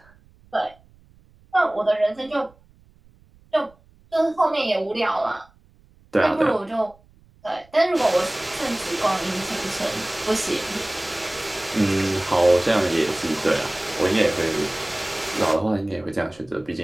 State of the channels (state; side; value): noise; right; rumble, 29 dB below the sound